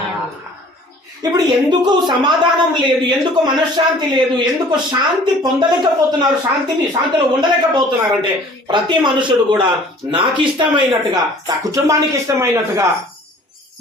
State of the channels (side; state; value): both; normal; correlation 0.51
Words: ఇప్పుడు ఎందుకు సమాధానం లేదు, ఎందుకు మనశ్శాంతి లేదు, ఎందుకు శాంతి పొందలేకపోతున్నారు, శాంతిలో ఉండలేకపోతున్నారు అంటే ప్రతి మనుషుడు కూడా నాకు ఇష్టమైనట్టుగా, నా కుటుంబానికి ఇష్టమైనట్టుగా